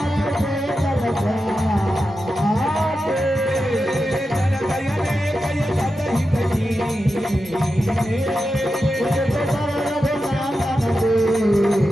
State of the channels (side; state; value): both; normal; correlation 0.90